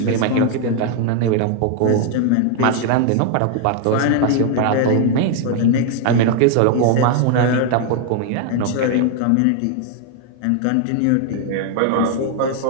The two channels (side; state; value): both; different; correlation 0.00